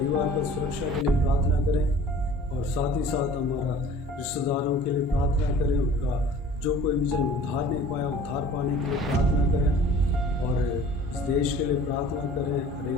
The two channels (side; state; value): both; normal; correlation 0.47